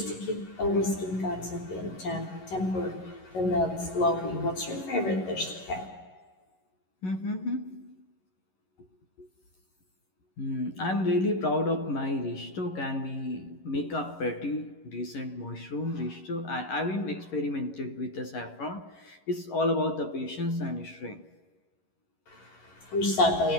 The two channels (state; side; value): late; right; 11 ms